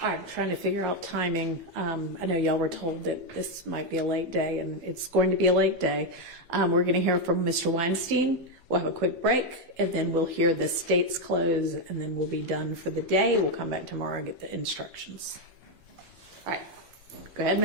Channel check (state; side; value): late; left; 11 ms